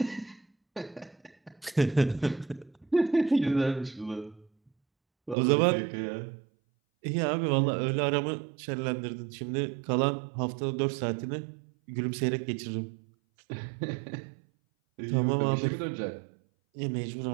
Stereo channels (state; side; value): drops out; left; at 5.4 s